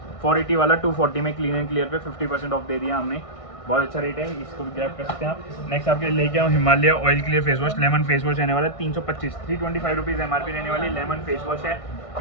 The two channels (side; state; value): right; late; 1.6 ms